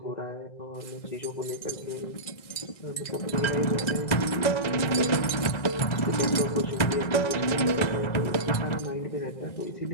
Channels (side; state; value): right; late; 2.0 ms